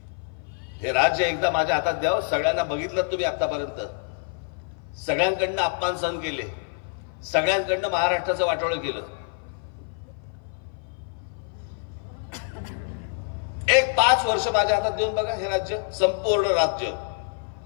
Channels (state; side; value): silent; right; 57 dB below the other